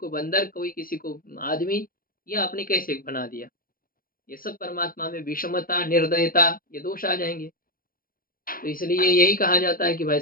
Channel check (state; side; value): late; right; 0.42 ms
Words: बंदर, कोई किसी को आदमी, ये आपने कैसे बना दिया? ये सब परमात्मा में विषमता, निर्दयता, ये दोष आ जाएँगे। तो इसलिए यही कहा जाता है कि भाई